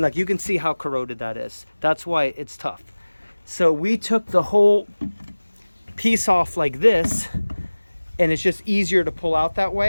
like you can see how corroded that is. That's why it's tough. So we took the whole piece off like this, and it's just easier to pull out that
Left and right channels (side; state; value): both; inverted; correlation -1.00